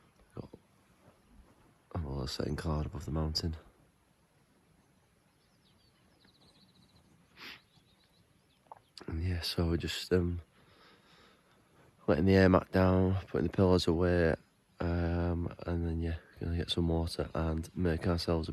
got a little setting cloud above the mountain. And yeah, so we're just letting the air mat down, putting the pillows away, and then yeah, gonna get some water and make ourselves a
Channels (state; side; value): identical; both; correlation 1.00